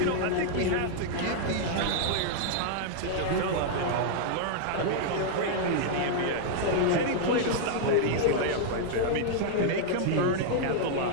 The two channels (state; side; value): different; both; correlation -0.01